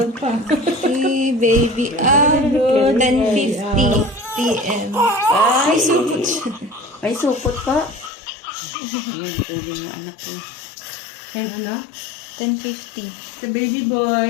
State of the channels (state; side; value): drops out; right; at 8.1 s